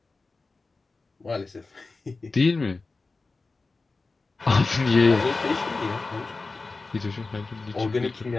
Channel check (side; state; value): right; quieter; 3.8 dB